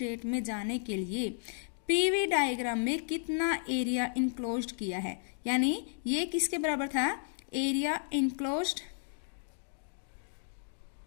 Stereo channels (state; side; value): silent; right; digital silence